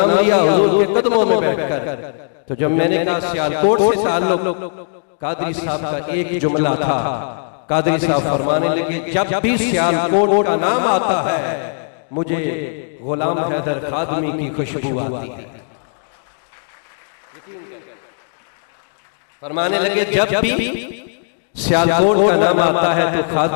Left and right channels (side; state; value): right; silent; digital silence